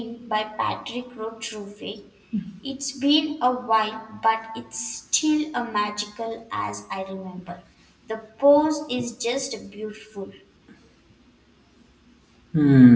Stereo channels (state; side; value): identical; both; correlation 1.00